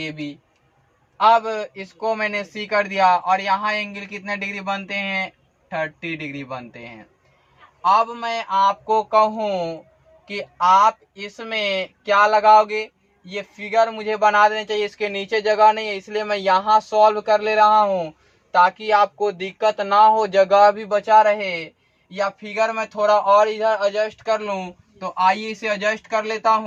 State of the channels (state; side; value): identical; both; correlation 1.00